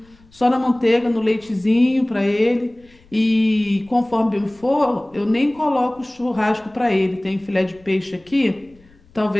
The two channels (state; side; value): noise; left; rumble, 29 dB below the sound